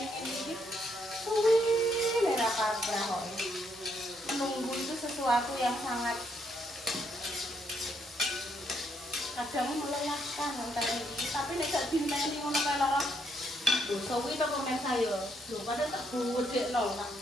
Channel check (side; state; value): both; normal; correlation 0.74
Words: ngene iki suwi nek kabrah kok. Menunggu itu sesuatu yang sangat kadang melelahkan ngenteni iki, tapi nek gak dineni ngono kae lho. Lho suwi to komen saya. Lho padahal tak gudekno, tak